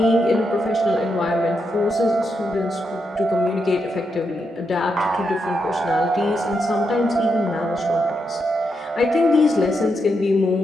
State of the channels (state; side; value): normal; both; correlation 0.83